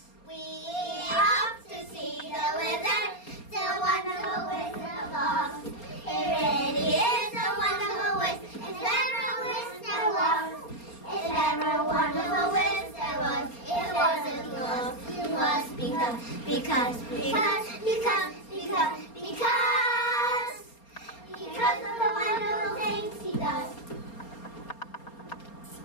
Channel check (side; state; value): right; late; 4.3 ms